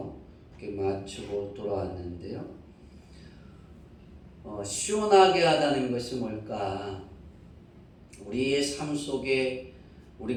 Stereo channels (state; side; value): identical; both; correlation 1.00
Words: 이렇게 마치고 돌아왔는데요. 시원하게 하다는 것이 뭘까? 우리의 삶 속에